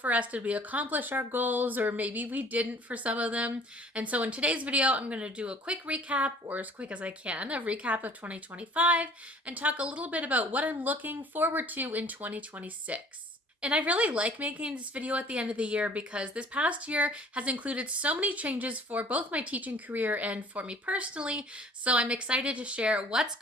us? Did we accomplish our goals, or maybe we didn't for some of them? And so in today's video, I'm going to do a quick recap, or as quick as I can, a recap of 2025, and talk a little bit about what I'm looking forward to in 2026. And I really like making this video at the end of the year because this past year has included so many changes for both my teaching career and for me personally. So I'm excited to share what's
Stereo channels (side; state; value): both; normal; correlation 0.52